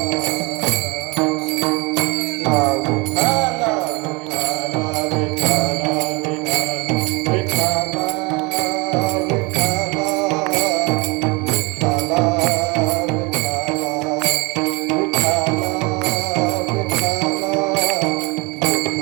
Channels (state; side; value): quieter; left; 27.1 dB